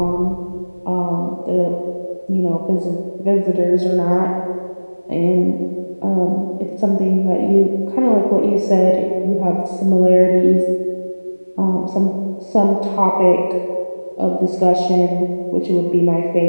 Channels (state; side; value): inverted; both; correlation -1.00